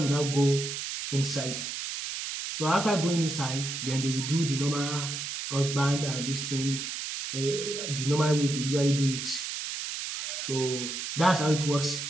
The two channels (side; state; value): right; noise; hiss, 5 dB below the sound